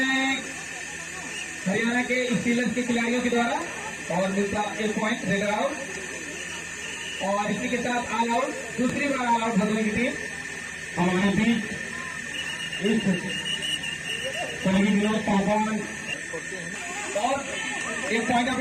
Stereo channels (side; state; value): both; identical; correlation 1.00